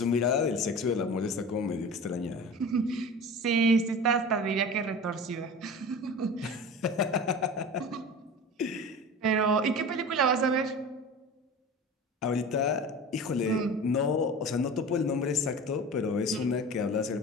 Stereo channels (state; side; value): normal; both; correlation 0.34